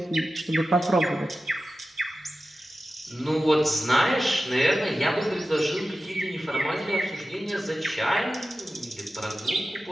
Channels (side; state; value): both; normal; correlation 0.94